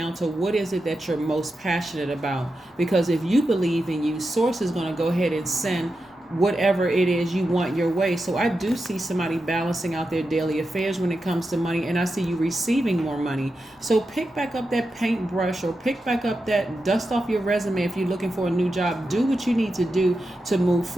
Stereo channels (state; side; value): normal; both; correlation 0.89